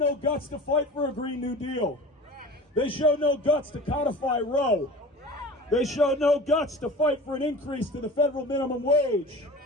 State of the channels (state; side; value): normal; both; correlation 0.37